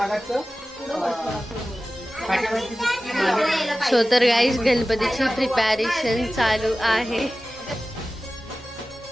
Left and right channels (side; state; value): both; normal; correlation 0.96